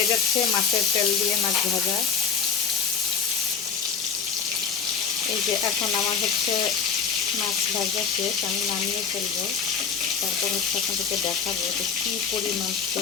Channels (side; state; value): right; quieter; 6.3 dB